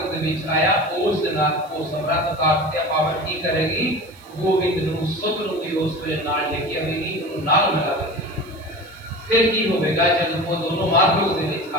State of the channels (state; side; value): noise; right; hiss, 27 dB below the sound